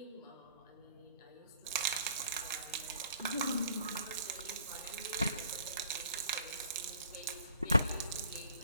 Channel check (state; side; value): inverted; both; correlation -0.56